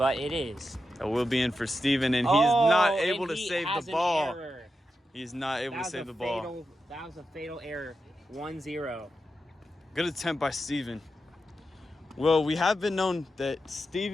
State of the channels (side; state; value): both; normal; correlation 0.89